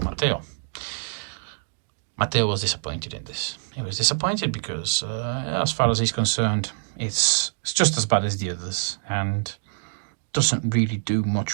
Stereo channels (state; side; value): silent; left; digital silence